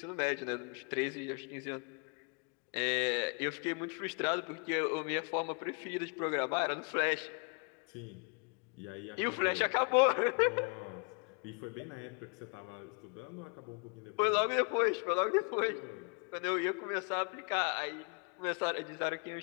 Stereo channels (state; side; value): quieter; right; 34.6 dB